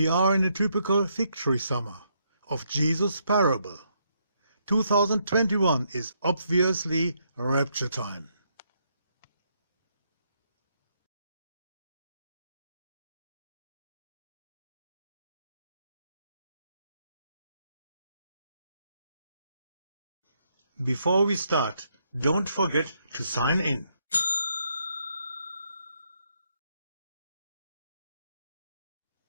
are in a typical fig tree summer of Jesus' parable. 2021 is obviously rapture time. Before we start, don't forget to sign in.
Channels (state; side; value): inverted; both; correlation -0.75